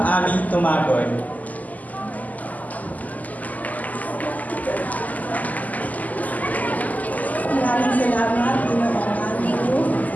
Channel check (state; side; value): late; right; 0.078 ms